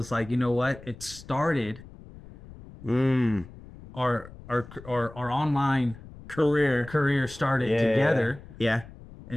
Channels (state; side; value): noise; left; rumble, 18 dB below the sound